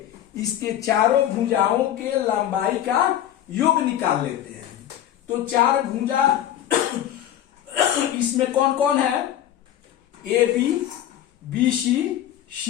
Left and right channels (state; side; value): quieter; right; 11.6 dB